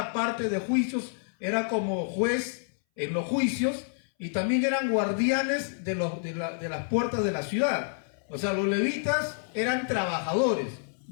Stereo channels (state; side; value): silent; right; 59 dB below the other